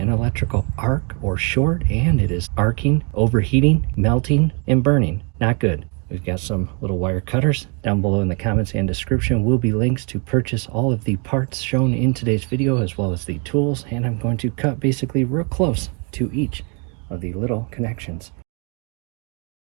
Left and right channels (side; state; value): left; quieter; 35.5 dB